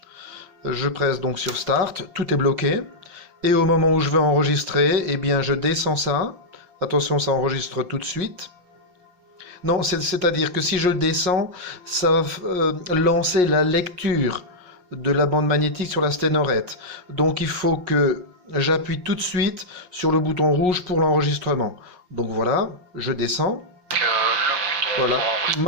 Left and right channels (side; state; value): left; late; 5.5 ms